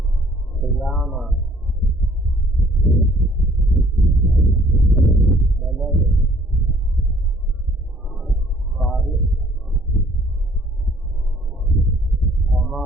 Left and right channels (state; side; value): normal; both; correlation 0.59